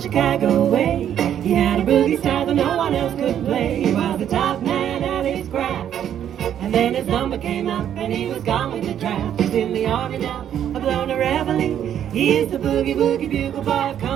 Chicago way. He had a boogie style that no one else could play. He was the top man at his craft. And then his number came up and he was gone with the draft. He's in the army now, a blown a reveille. He is the boogie woogie bugle boy of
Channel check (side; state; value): left; quieter; 9.9 dB